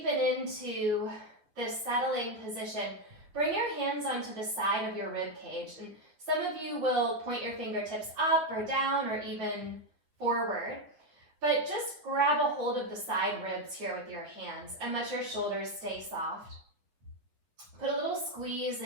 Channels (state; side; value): late; left; 9.3 ms